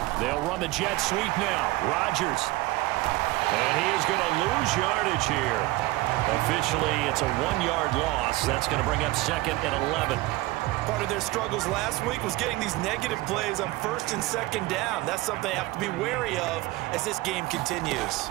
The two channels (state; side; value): quieter; left; 19.4 dB